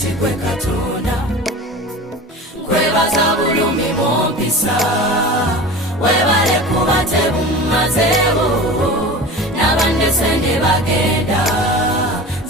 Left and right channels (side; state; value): both; normal; correlation 0.34